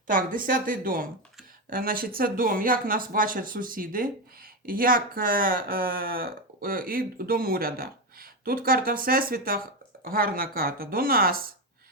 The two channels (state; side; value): normal; both; correlation 0.11